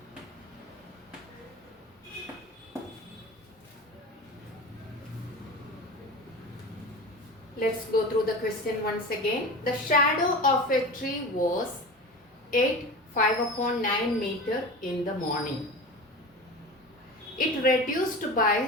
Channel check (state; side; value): normal; both; correlation 0.32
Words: Let's go through the question once again. The shadow of a tree was 8 5/9 meter in the morning. It reduced